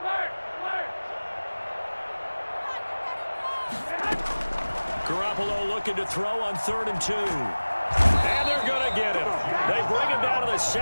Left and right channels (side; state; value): both; inverted; correlation -1.00